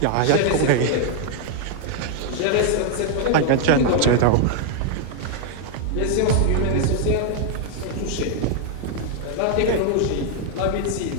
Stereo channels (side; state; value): both; different; correlation 0.00